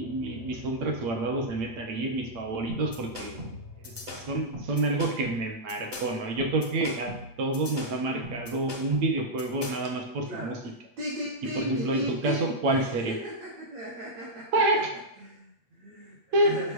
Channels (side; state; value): left; late; 8.1 ms